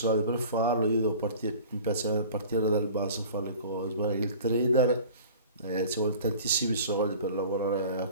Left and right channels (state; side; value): inverted; both; correlation -0.42